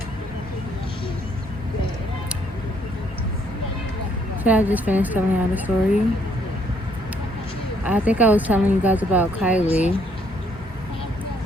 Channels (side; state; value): both; normal; correlation 0.68